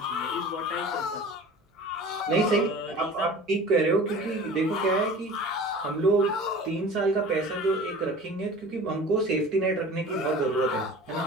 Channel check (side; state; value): both; normal; correlation 0.41